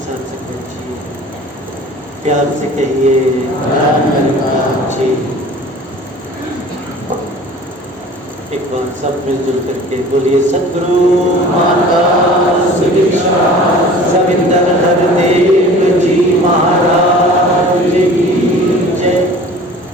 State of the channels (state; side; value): normal; both; correlation 0.44